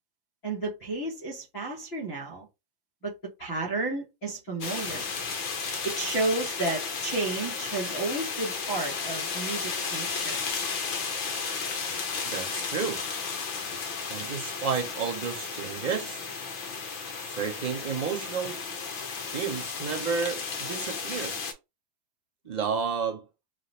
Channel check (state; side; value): late; right; 5.9 ms